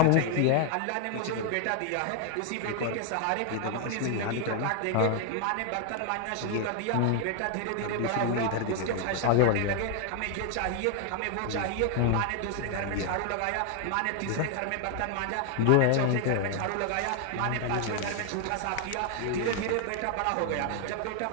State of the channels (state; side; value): different; both; correlation 0.00